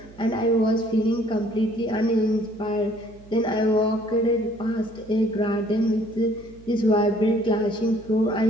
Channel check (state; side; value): noise; right; hum, 22 dB below the sound